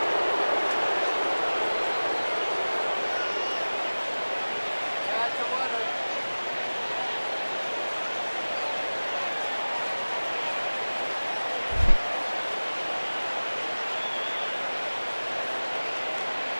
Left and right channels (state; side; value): inverted; both; correlation -1.00